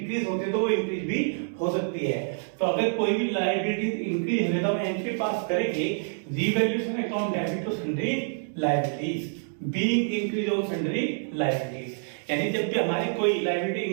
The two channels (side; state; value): left; silent; digital silence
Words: होती है तो वो इंक्रीज भी हो सकती है। तो अगर कोई भी लायबिलिटी इंक्रीज हो तो हम एंट्री पास करेंगे revaluation account debit to sundry liabilities being increase on sundry liabilities. यानी जब भी हमारी कोई लायबिलिटी